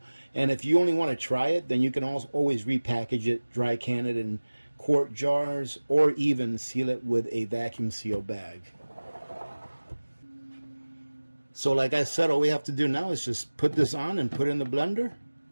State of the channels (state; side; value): inverted; both; correlation -1.00